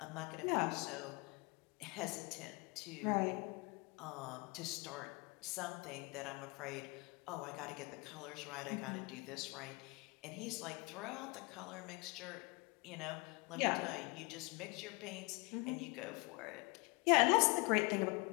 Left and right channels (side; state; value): right; quieter; 28.2 dB